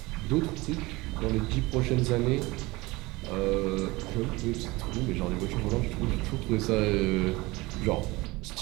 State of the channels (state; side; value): quieter; left; 21.9 dB